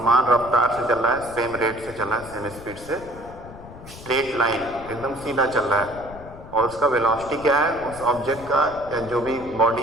रफ्तार से चल रहा है, सेम रेट से चल रहा है, सेम स्पीड से, स्ट्रेट लाइन एकदम सीधा चल रहा है, और उसका वेलोसिटी क्या है उस ऑब्जेक्ट का, जो भी बॉडी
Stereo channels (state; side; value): noise; left; rumble, 16 dB below the sound